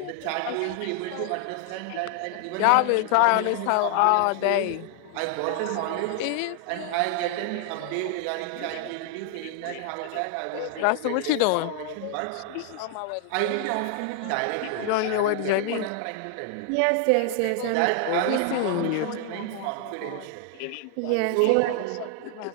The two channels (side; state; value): both; different; correlation 0.00